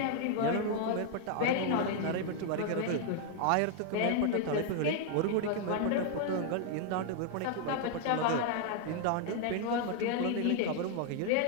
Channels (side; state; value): both; different; correlation 0.00